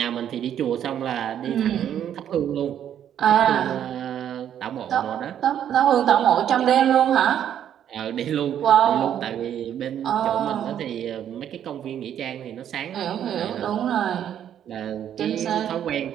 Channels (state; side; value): quieter; left; 9.9 dB